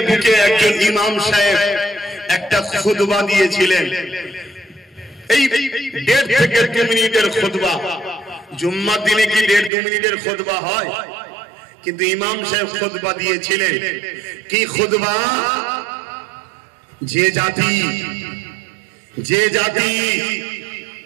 বুকে একজন ইমাম সাহেব একটা খুতবা দিয়েছিলেন, এই 1.5 থেকে 2 মিনিটের খুতবা। জুম্মার দিনে কি 1.5-2 মিনিটের খুতবা হয়? কিন্তু ইমাম সাহেব খুতবা দিয়েছিলেন কি খুতবা? যে জাতি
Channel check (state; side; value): drops out; left; at 9.7 s